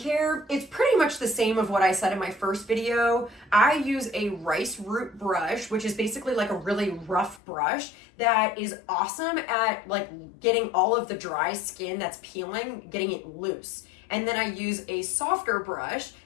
it's pretty much the same of what I said in my first video. I use a rice root brush, which is basically like a really rough brush that is awesome at like getting all of the dry skin that's peeling, getting it loose. And then I use a softer brush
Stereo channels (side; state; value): right; drops out; at 7.4 s